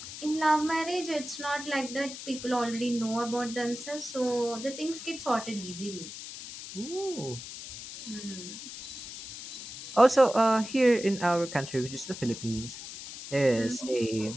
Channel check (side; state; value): left; noise; hiss, 11 dB below the sound